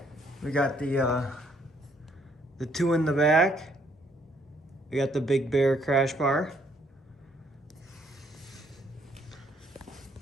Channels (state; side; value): normal; both; correlation 0.68